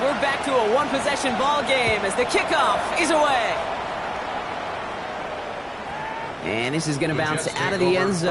we're back to a one-possession ball game as the kickoff is away. And this is going to bounce out of the end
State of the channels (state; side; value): identical; both; correlation 1.00